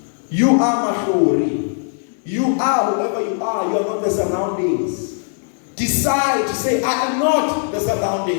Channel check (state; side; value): silent; right; digital silence